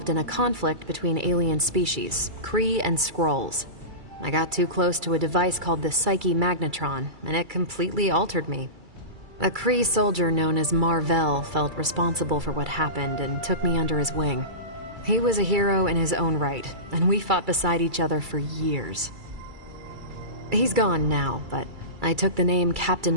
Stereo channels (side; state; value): left; late; 2.3 ms